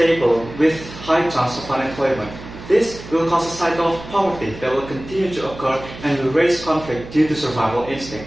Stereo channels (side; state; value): right; noise; hum, 14 dB below the sound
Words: with high chance of unemployment. This will cause a cycle of poverty that will continue to occur and will raise conflict due to survival